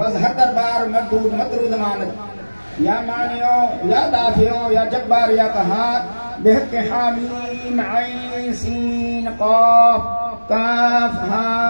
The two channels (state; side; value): inverted; both; correlation -1.00